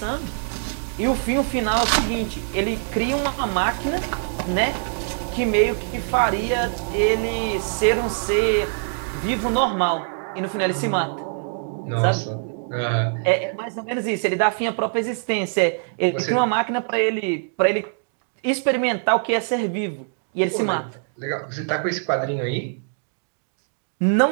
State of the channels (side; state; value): left; silent; digital silence